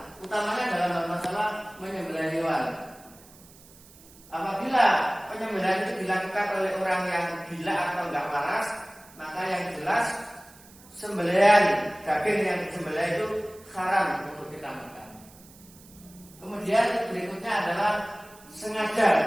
utamanya dalam masalah menyembelih hewan. Apabila penyembelihan itu dilakukan oleh orang yang gila atau enggak waras, maka yang jelas sembelihan daging yang disembelih itu haram untuk kita makan. Kemudian berikutnya adalah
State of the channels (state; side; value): noise; right; hiss, 23 dB below the sound